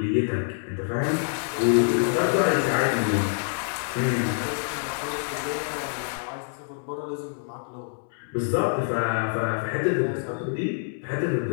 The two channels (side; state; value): right; silent; 61 dB below the other